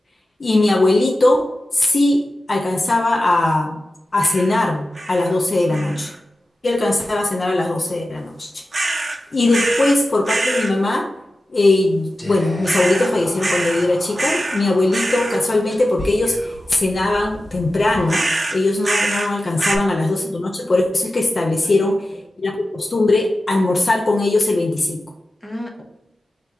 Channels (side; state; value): both; normal; correlation 0.94